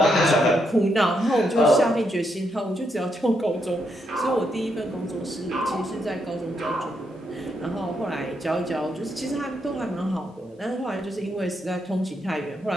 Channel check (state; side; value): normal; both; correlation 0.79